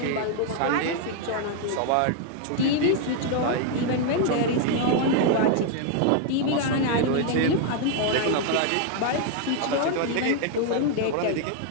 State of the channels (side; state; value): both; different; correlation 0.00